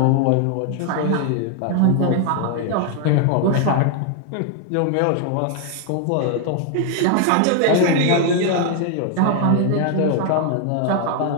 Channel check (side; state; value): both; different; correlation 0.00